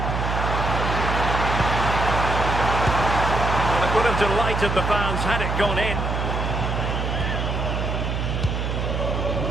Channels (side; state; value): right; noise; hum, 1 dB below the sound